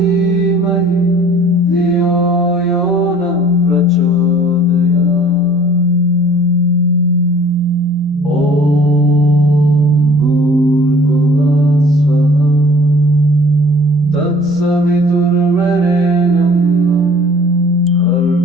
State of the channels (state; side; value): normal; both; correlation 0.51